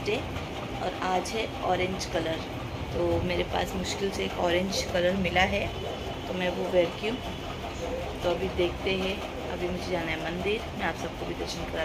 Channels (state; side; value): identical; both; correlation 1.00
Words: डे और आज है ऑरेंज कलर। तो मेरे पास मुश्किल से एक ऑरेंज कलर मिला है तो मैं वो वेयर की हूँ। तो अभी देखते हैं, अभी मुझे जाना है मंदिर। मैं आप सबको भी दर्शन